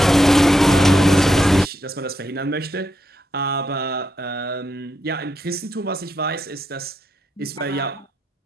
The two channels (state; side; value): normal; both; correlation 0.82